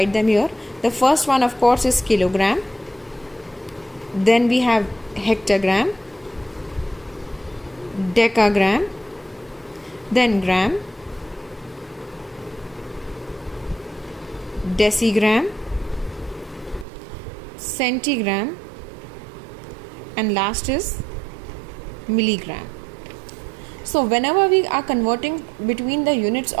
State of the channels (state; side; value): drops out; left; at 16.9 s